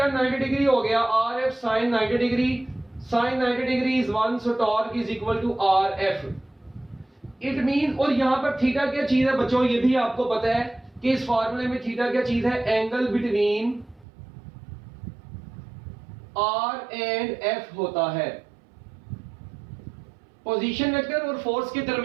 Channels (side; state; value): left; drops out; at 14.1 s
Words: 90 डिग्री हो गया, R F sine 90 degree, sine 90 degree is 1, so torque is equal to R F. It mean, और यहां पर थीटा क्या चीज है बच्चों, ये भी आपको पता है कि इस फार्मूले में थीटा क्या चीज है, angle between R and F होता है। पोजीशन वेक्टर और फोर्स के